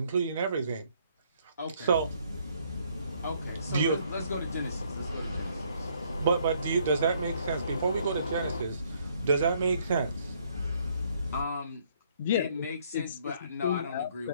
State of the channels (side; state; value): both; inverted; correlation -0.66